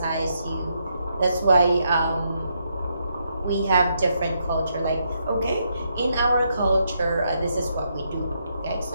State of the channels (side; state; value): both; inverted; correlation -0.78